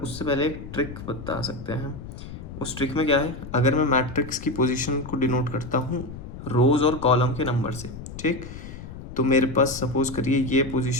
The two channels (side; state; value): left; noise; rumble, 12 dB below the sound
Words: पहले एक ट्रिक बता सकते हैं हम। उस ट्रिक में क्या है, अगर मैं मैट्रिक्स की पोजीशन को डिनोट करता हूँ रोज और कॉलम के नंबर से, ठीक, तो मेरे पास सपोज करिए ये